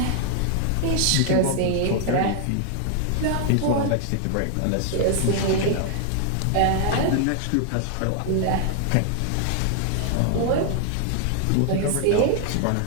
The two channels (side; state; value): both; different; correlation 0.00